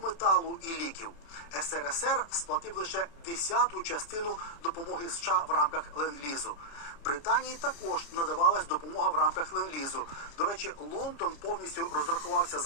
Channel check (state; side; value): late; right; 29 ms